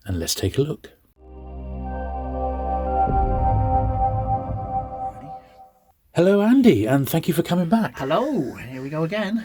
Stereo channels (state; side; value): identical; both; correlation 1.00